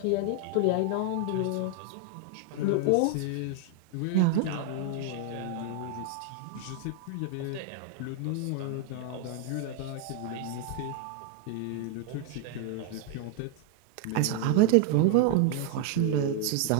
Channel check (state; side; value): different; both; correlation 0.00